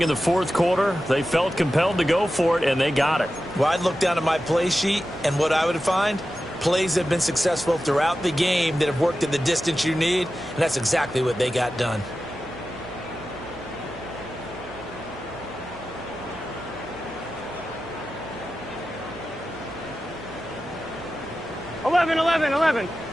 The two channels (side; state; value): right; noise; hum, 17 dB below the sound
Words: in the 4th quarter. They felt compelled to go for it, and they got it. Well, I'd look down at my play sheet, and what I would find, plays have been successful throughout the game that have worked in the distance you need, and that's exactly what they got done.